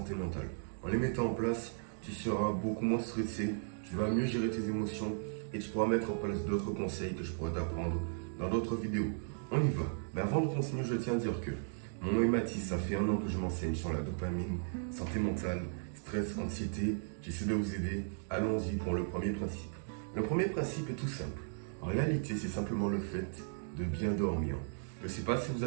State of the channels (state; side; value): silent; left; digital silence